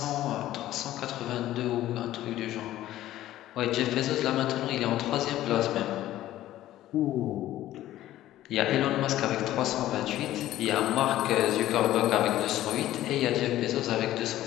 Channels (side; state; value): right; quieter; 14.1 dB